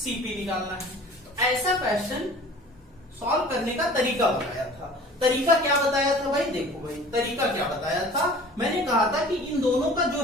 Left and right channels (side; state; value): both; normal; correlation 0.45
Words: निकालना है। तो ऐसा क्वेश्चन सॉल्व करने का तरीका बताया था। तरीका क्या बताया था भाई, देखो भाई तरीका क्या बताया था, मैंने कहा था कि इन दोनों का